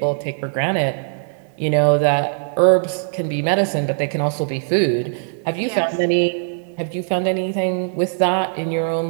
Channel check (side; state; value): left; silent; 66 dB below the other